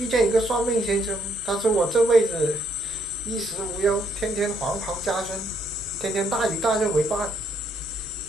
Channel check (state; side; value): normal; both; correlation 0.71